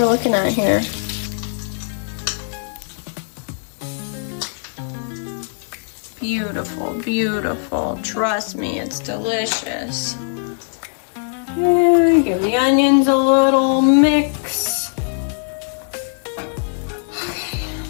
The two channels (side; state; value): right; silent; 66 dB below the other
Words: looking at here. Beautiful, beautiful. Trust me, it's delicious. Okay, give the onions a little mix.